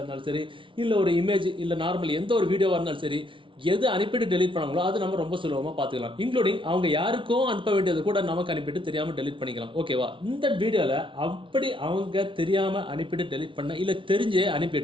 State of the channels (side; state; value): left; late; 0.25 ms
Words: சரி, இல்லை ஒரு இமேஜ், இல்லை நார்மல் எந்த ஒரு வீடியோவாக இருந்தாலும் சரி, எது அனுப்பிட்டு டெலிட் பண்ணாங்களோ அது நம்ம ரொம்ப சுலபமாக பார்த்துக்கலாம். இன்க்ளூடிங் அவங்க யாருக்கும் அனுப்ப வேண்டியது கூட நமக்கு அனுப்பிட்டு தெரியாமல் டெலிட் பண்ணிக்கலாம். ஓகேவா? இந்த வீடியோவில் அப்படி அவங்க தெரியாமல் அனுப்பிட்டு டெலிட் பண்ண, இல்லை தெரிஞ்சே